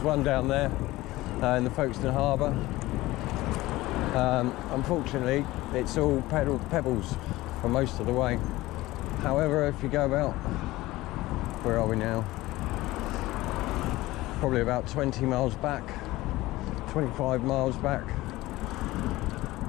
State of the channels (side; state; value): right; quieter; 18.3 dB